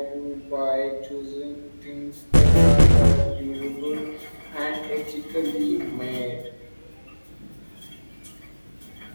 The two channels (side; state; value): both; inverted; correlation -1.00